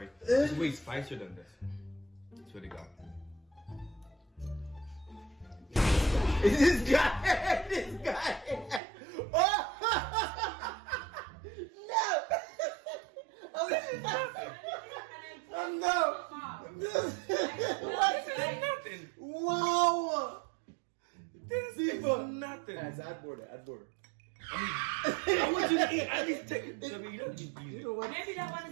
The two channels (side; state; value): left; drops out; at 8.8 s